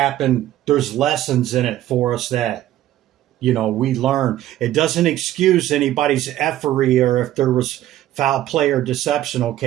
there's lessons in it for us that, you know, we learn. It doesn't excuse anybody's effery or if there was foul play or deception,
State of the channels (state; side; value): quieter; left; 13.5 dB